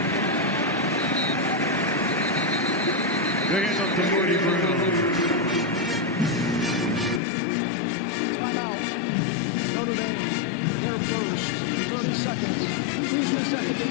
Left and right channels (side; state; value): right; drops out; at 7.2 s